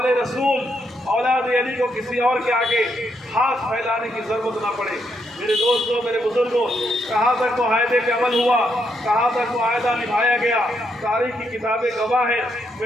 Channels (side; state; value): both; normal; correlation 0.78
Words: رسول اولاد علی کو کسی اور کے آگے ہاتھ پھیلانے کی ضرورت نہ پڑے۔ میرے دوستوں، میرے بزرگوں، کہاں تک معاہدے پہ عمل ہوا، کہاں تک معاہدہ نبھایا گیا، تاریخ کی کتابیں گواہ ہیں۔